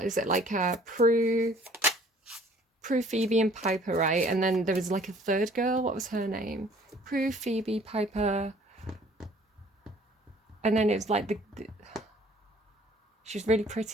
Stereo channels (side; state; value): both; normal; correlation 0.55